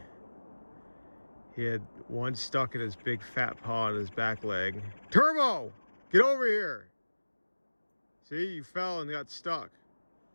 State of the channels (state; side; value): inverted; both; correlation -1.00